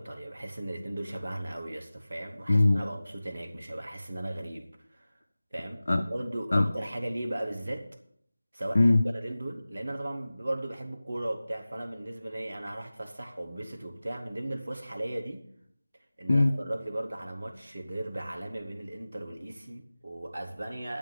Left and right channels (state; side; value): inverted; both; correlation -0.97